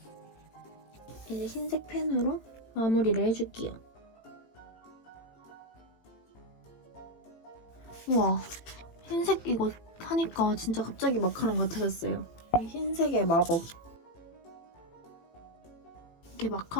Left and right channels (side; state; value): right; late; 18 ms